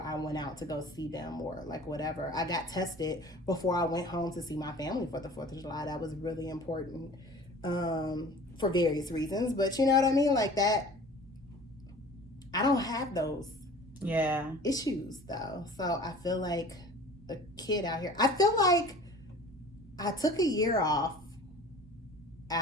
I went out to go see them or like whatever. I got tested before I went home to see my family for the 4th of July. That was really important for various reasons. But you know what I mean? Like that, I don't have those issues though. So I feel like a kid out here. I feel like I took a year off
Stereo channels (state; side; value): normal; both; correlation 0.44